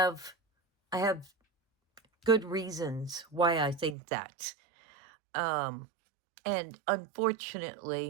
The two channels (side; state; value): left; drops out; at 4.0 s